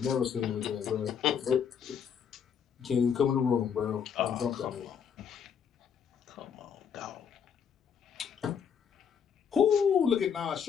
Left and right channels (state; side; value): quieter; right; 7.5 dB